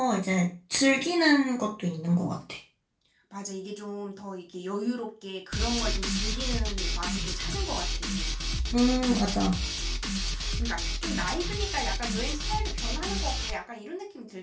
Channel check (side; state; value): both; identical; correlation 1.00